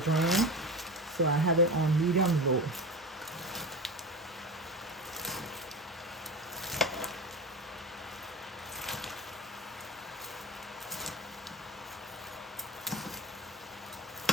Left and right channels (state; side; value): normal; both; correlation 0.28